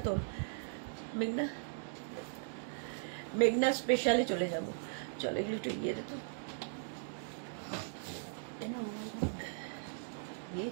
তো মেঘনা, মেঘনা স্পেশালে চলে যাব। চলো এগুলো একটু গিয়ে দেখো,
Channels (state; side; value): silent; left; digital silence